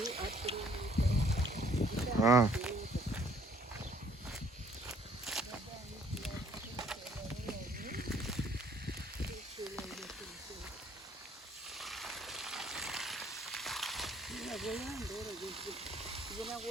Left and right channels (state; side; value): normal; both; correlation 0.61